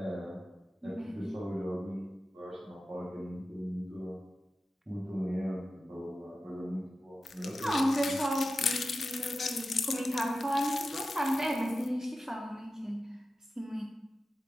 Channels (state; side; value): normal; both; correlation 0.93